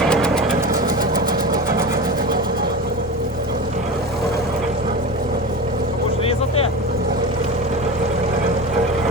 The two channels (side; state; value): both; normal; correlation 0.27